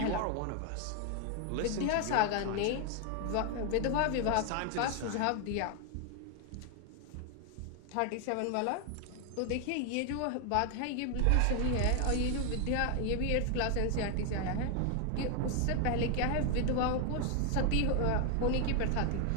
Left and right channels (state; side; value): different; both; correlation 0.00